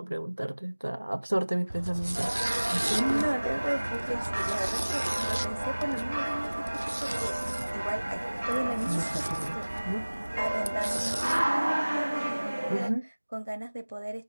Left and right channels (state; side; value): inverted; both; correlation -1.00